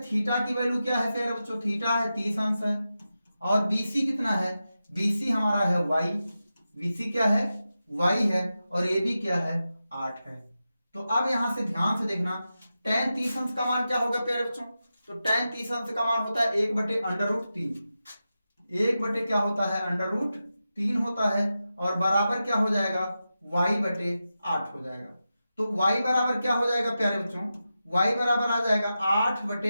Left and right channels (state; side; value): inverted; both; correlation -0.91